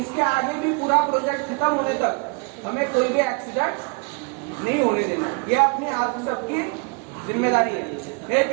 आगे भी पूरा प्रोजेक्ट खत्म होने तक हमें कोई भी एक्सीडेंट नहीं होने देना। ये अपनी आप सबकी जिम्मेदारी है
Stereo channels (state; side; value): quieter; left; 33.2 dB